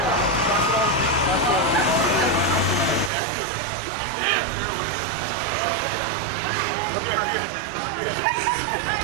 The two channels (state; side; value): drops out; left; at 3.1 s